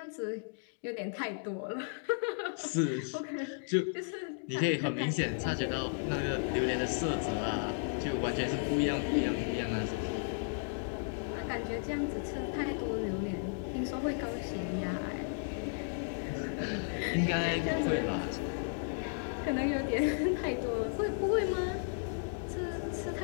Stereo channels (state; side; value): silent; right; digital silence